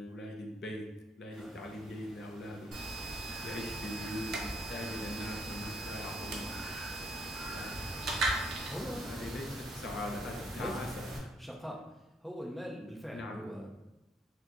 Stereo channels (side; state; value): both; normal; correlation 0.69